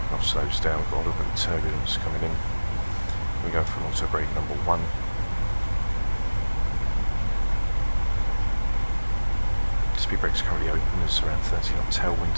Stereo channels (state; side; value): inverted; both; correlation -1.00